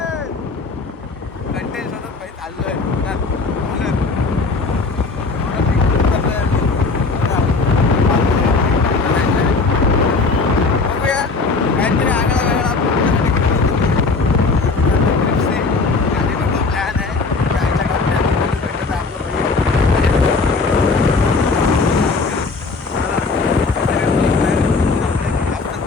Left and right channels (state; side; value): quieter; right; 4.1 dB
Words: कंटेंट शोधत भाई चाललोय. बघूया काहीतरी आगळा वेगळा